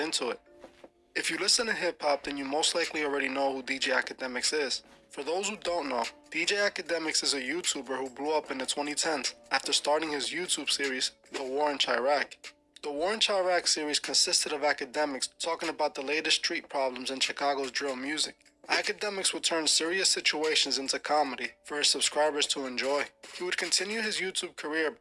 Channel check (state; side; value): identical; both; correlation 1.00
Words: it. If you listen to hip-hop, then you most likely already know who DJ Academics is. For those who don't know, DJ Academics is a YouTuber who blew up in the 2010s after starting his YouTube series, The War in Chirac. The War in Chirac series consisted of Academics talking about the latest street problems in Chicago's drill music. Academics would turn serious situations into comedy for his subscribers to enjoy. He would continue his YouTube career